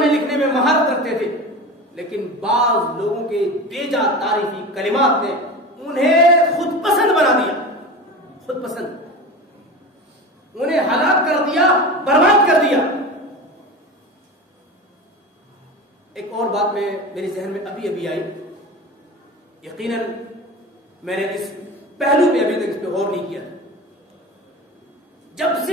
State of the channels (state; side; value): normal; both; correlation 0.30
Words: لکھنے میں مہارت رکھتے تھے، لیکن بعض لوگوں کے بیجا تعریفی کلمات نے انہیں خود پسند بنا دیا، خود پسند، انہیں ہلاک کر دیا، برباد کر دیا۔ ایک اور بات میرے ذہن میں ابھی آئی، یقیناً میں نے اس پہلو پہ ابھی تک اس پہ غور نہیں کیا۔ جب